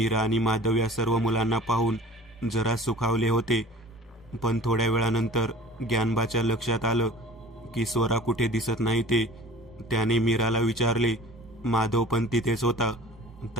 आणि माधव या सर्व मुलांना पाहून जरा सुखावले होते. पण थोड्या वेळानंतर ज्ञानबाच्या लक्षात आलं की स्वरा कुठे दिसत नाही ते. त्याने मीराला विचारले. माधव पण तिथेच होता.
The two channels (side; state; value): both; normal; correlation 0.45